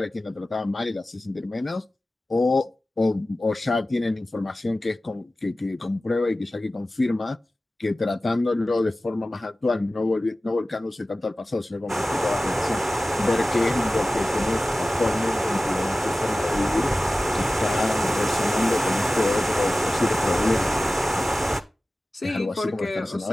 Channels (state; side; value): normal; both; correlation 0.96